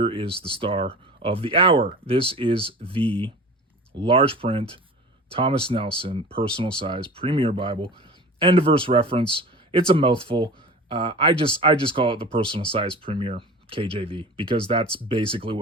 is the star of the hour. This is the large print Thomas Nelson personal size Premier Bible, end of verse reference. It's a mouthful. I just call it the personal size Premier. KJV, because that's basically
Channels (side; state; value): both; normal; correlation 0.37